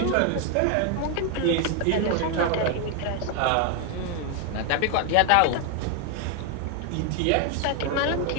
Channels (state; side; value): different; both; correlation 0.01